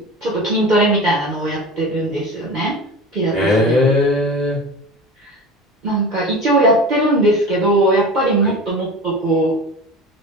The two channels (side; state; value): both; normal; correlation 0.32